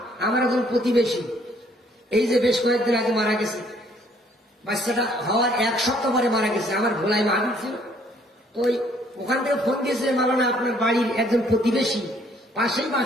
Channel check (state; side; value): normal; both; correlation 0.63